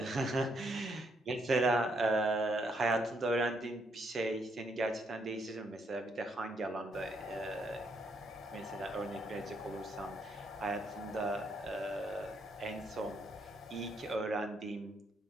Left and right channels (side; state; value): both; normal; correlation 0.74